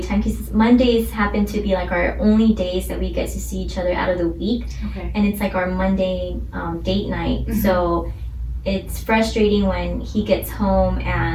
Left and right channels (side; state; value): both; identical; correlation 1.00